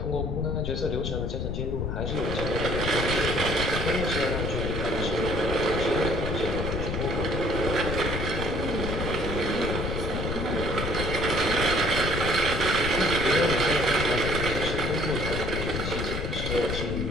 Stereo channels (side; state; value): left; noise; rumble, 3 dB below the sound